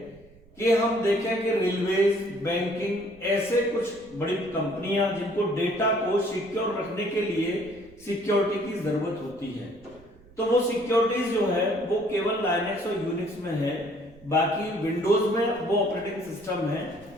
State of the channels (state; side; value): noise; right; rumble, 25 dB below the sound